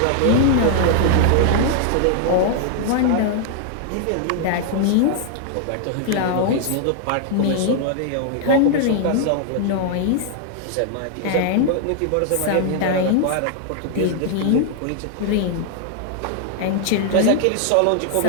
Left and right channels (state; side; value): different; both; correlation 0.00